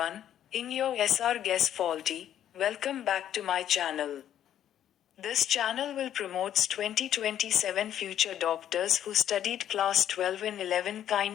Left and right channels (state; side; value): quieter; right; 10.7 dB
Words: in your SRGuess faulty, welcome back to my channel. This channel will promote 2027 future doctors who studied class 12 and 11.